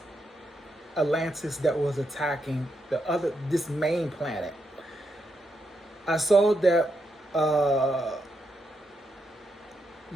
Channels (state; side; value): normal; both; correlation 0.82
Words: Atlantis that was attacking this main planet. I saw that the